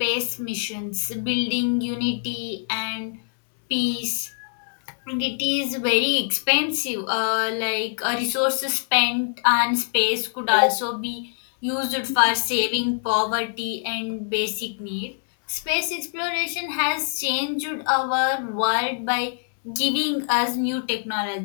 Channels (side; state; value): right; silent; digital silence